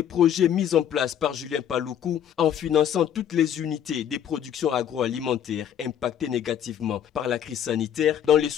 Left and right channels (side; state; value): right; quieter; 9.5 dB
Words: projets mis en place par Julien Paluku en finançant toutes les unités des productions agroalimentaires impactées négativement par la crise sanitaire dans les